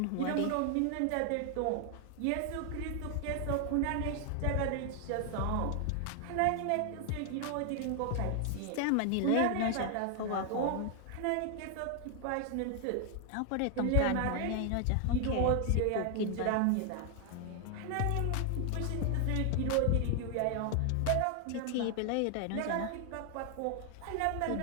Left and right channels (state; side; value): different; both; correlation 0.00